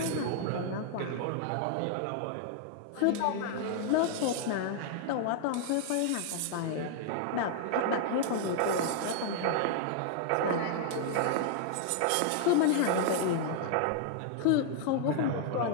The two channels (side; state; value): both; different; correlation 0.00